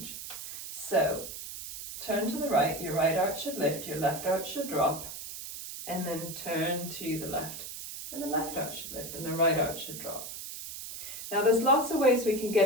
So turn to the right, your right arch should lift, your left arch should drop, and then turn to the left, and the left arch should lift, and the right arch should drop. Now there's lots of ways we can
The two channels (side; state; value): right; noise; hiss, 9 dB below the sound